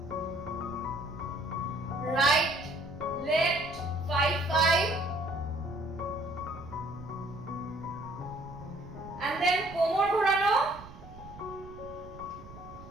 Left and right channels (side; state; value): right; noise; rumble, 17 dB below the sound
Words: রাইট লেফট 5 and then কোমর ঘোরানো